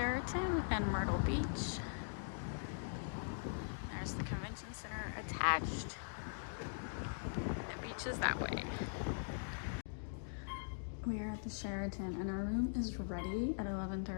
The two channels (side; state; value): right; silent; digital silence